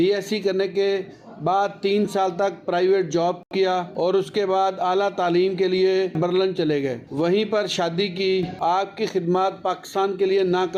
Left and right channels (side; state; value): both; identical; correlation 1.00